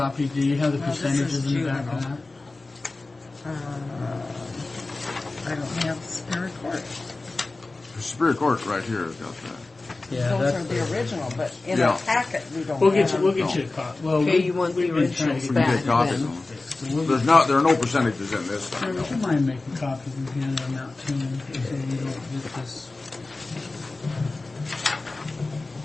Do you have the No, this percentages is in the back of juvenile. that? I don't have Superior Court. Superior Court right here has got that. Yeah, Those that's are the original, but in Yeah. our packet we don't We'll have. get you. We'll get you a copy. Well, Okay, you want the we've been trying originals to We get- can back get copies then. of them. There are no percentages in this thing. Would you mind making copies and handing them out to me so we don't get this?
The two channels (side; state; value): right; quieter; 3.3 dB